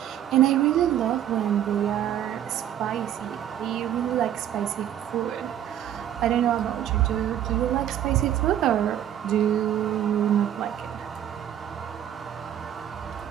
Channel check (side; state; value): left; quieter; 10.8 dB